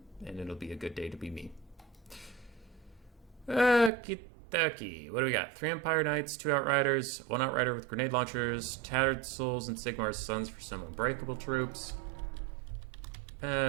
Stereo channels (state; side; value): drops out; left; at 3.9 s